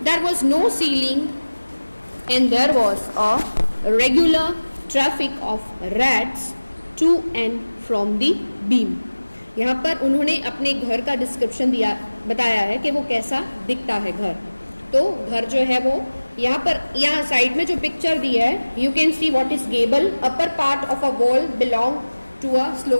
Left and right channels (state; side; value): inverted; both; correlation -1.00